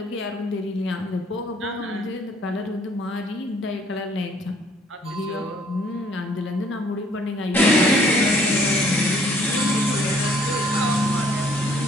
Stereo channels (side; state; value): both; normal; correlation 0.61